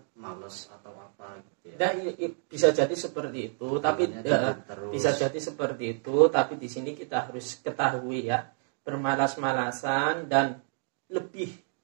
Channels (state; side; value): silent; left; 59 dB below the other